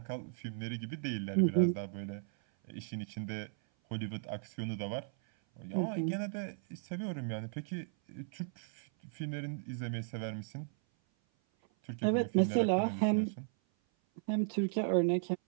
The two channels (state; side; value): silent; left; 54 dB below the other